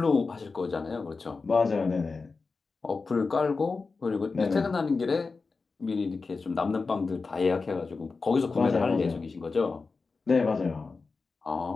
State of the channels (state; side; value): quieter; right; 4.3 dB